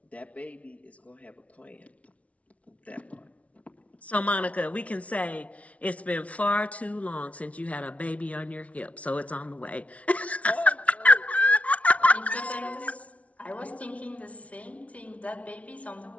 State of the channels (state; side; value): late; right; 0.065 ms